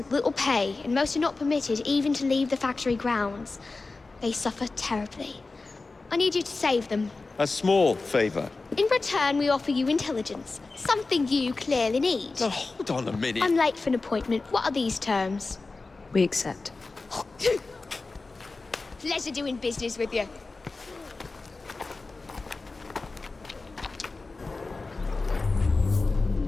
little pay, and most are not permitted even to leave the factory grounds. They suffer terribly. I need you to save them. A small favor. In return, we offer you intelligence, something you clearly need. Now, hold on a minute. I'm late for an appointment. What are these terms? We accept. Pleasure doing business with you.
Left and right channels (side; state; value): right; quieter; 3.7 dB